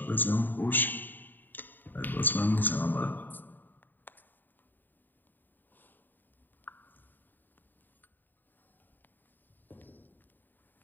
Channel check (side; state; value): right; late; 0.090 ms